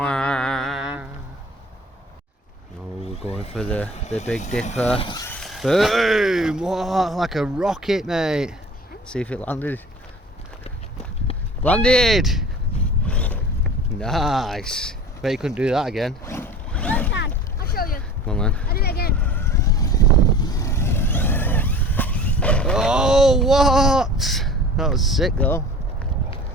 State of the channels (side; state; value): both; normal; correlation 0.41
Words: Oh, we're going for the Big Dipper. Boom! What? Like a rocket, mate. See if it landed. Landed! Nice. Bet you couldn't do that again. I can. I'll show you. Come on then. I'll do it again. Oh, what? That was sick though.